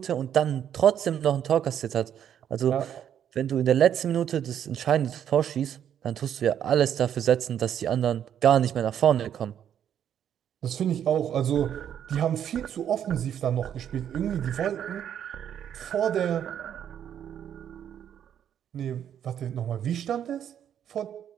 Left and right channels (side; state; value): left; quieter; 9.5 dB